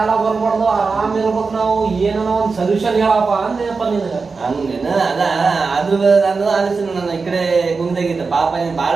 ಬರ್ಬಾರ್ದು ಆರಾಮ್ ಇರ್ಬೇಕು ನಾವು ಏನೋ ಒಂದ್ ಸೊಲ್ಯೂಷನ್ ಹೇಳಪ್ಪ ಅಂದೇನಪ್ಪ ನಿನಗ ಹಂಗೇನ ಅದ ಆದ್ರೂ ನಾನು ಆಲೋಚನೆ ನಾನು ಈ ಕಡೆ ಗುಂದಾಗಿದ್ದ ಪಾಪ ನೀನ್ ಬಾಳ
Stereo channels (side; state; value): left; quieter; 4.5 dB